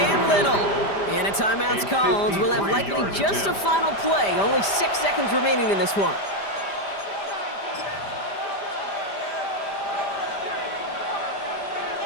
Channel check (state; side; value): late; right; 5.0 ms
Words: Little. And a timeout's called. We'll have likely just a final play. Only 6 seconds remaining in this one.